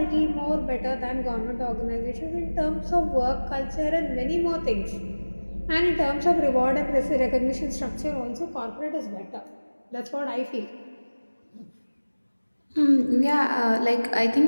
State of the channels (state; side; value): inverted; both; correlation -1.00